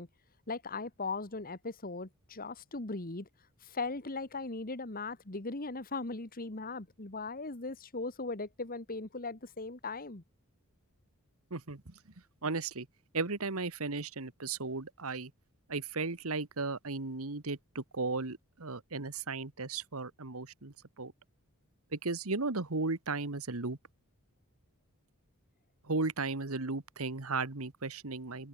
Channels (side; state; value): both; normal; correlation -0.08